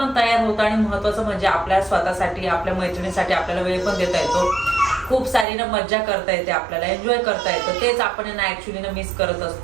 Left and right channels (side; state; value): left; drops out; at 5.5 s